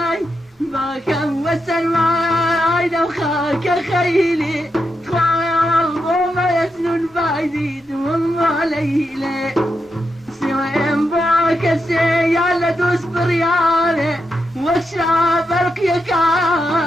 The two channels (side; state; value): both; normal; correlation 0.85